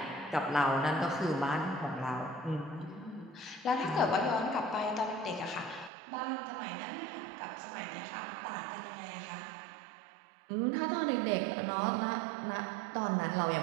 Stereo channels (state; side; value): drops out; left; at 5.9 s